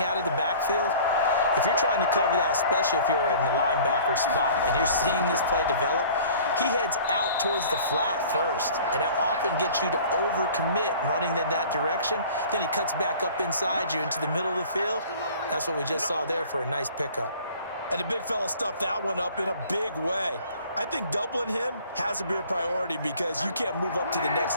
out of the backfield, if you're trying to cover that, especially if you're in the linebacker spot and you're seeing this play develop, he heads out towards the flat first, and that often gets you to overcommit running in that direction. Then he cuts back up inside you into the middle of the field. That's what we just saw there for a nice pickup. And the big fella stuffed that one up in a big way. I think doubling him has to be a priority because you can't move up to the next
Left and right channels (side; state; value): both; inverted; correlation -0.48